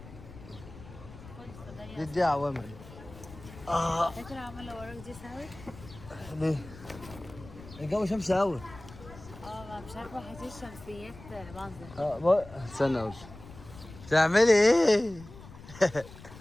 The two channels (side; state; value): left; noise; rumble, 17 dB below the sound